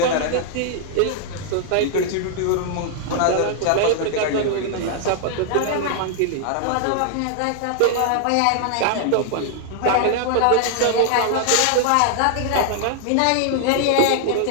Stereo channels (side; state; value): both; different; correlation -0.01